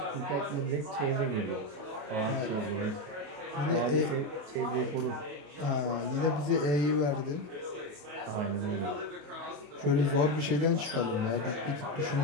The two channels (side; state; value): left; late; 28 ms